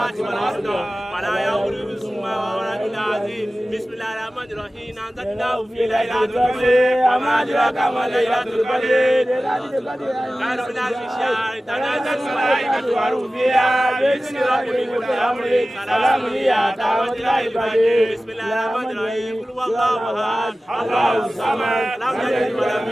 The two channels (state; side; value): normal; both; correlation 0.96